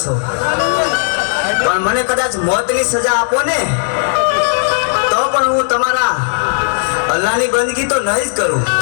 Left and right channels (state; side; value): silent; right; digital silence